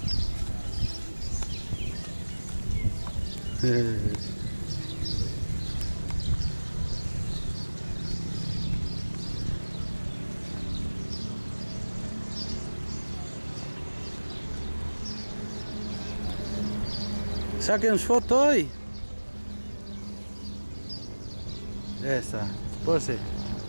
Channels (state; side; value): inverted; both; correlation -1.00